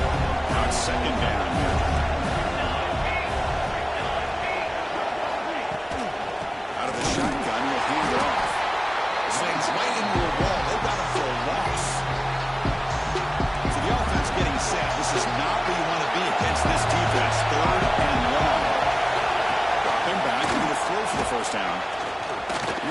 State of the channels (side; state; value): both; identical; correlation 1.00